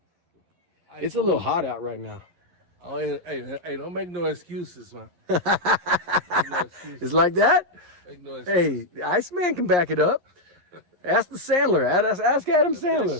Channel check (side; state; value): left; late; 11 ms